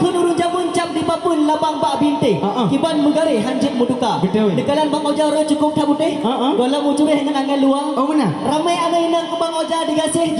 jamun cap di papun labang bak binte. Kiban megare hanjit muduka. Betul. Dekalan Bang Oja ro cukup tak putih. Gola mucureh dengan angin luar. Oh benar. Ramai ada inang ke Bang Oja digasih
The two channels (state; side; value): identical; both; correlation 1.00